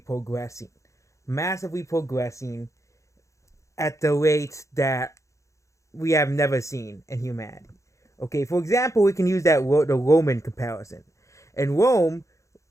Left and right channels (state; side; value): late; right; 0.15 ms